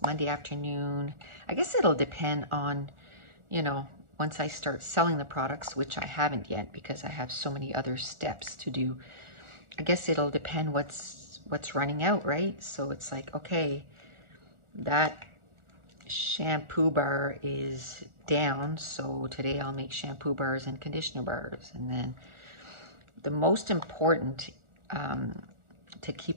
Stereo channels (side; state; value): left; late; 1.4 ms